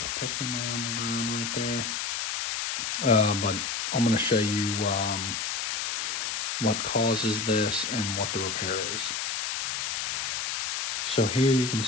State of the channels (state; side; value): noise; left; hiss, 2 dB below the sound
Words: a piston laying on the ground right there. But I'm going to show you what causes this and what the repair is. So here you can